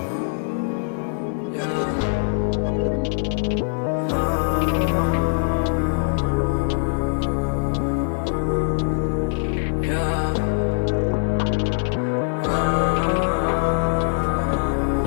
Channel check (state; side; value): silent; right; 64 dB below the other